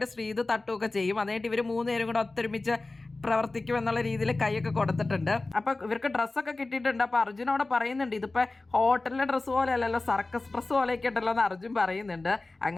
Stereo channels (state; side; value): quieter; right; 3.2 dB